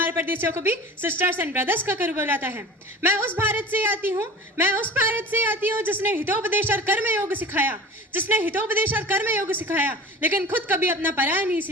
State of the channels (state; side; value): normal; both; correlation 0.38